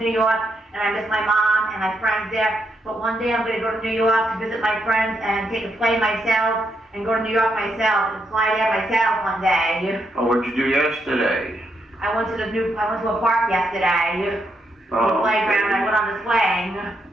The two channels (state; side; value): normal; both; correlation 0.79